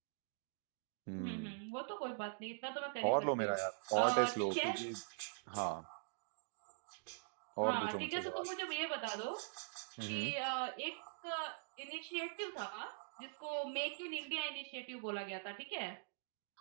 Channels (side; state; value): left; silent; digital silence